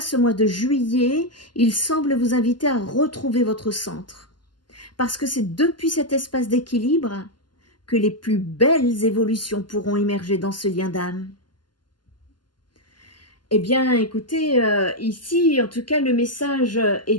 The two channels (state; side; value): late; right; 0.71 ms